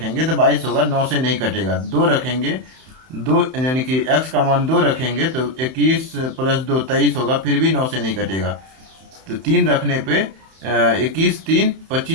तो 22 होगा, 9 से नहीं कटेगा। 2 रखेंगे, 2 यानी कि x का मान 2 रखेंगे तो 21 + 2 23 होगा, फिर भी 9 से नहीं कटेगा। तो 3 रखने पे 21 3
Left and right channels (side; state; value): left; late; 31 ms